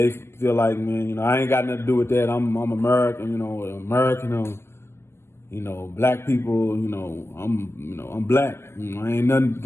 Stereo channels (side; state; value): right; late; 0.12 ms